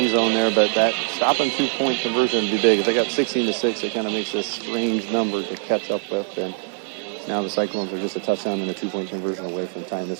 zone there, but that stopping 2-point conversion would be big. If they got 16-6, it kind of makes this strange number to catch up with. And now the Cyclones are just a touchdown and a 2-point conversion away from tying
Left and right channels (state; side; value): silent; left; 64 dB below the other